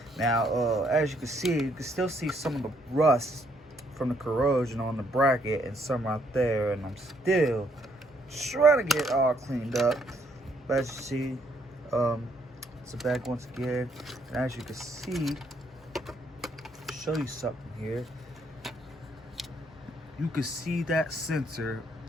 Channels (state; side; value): normal; both; correlation 0.70